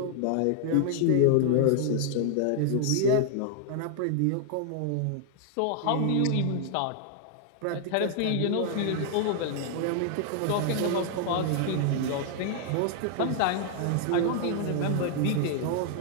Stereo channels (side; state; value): both; different; correlation 0.00